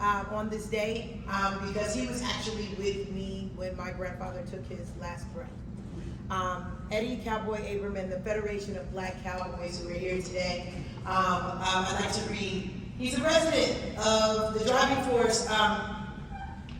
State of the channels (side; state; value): both; identical; correlation 1.00